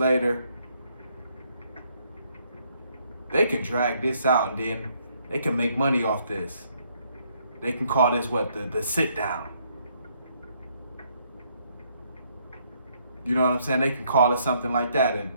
They can drag this out and then they can make money off this. They can call this the sit down. You know what I'm saying? They can call it something like that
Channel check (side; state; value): both; inverted; correlation -0.70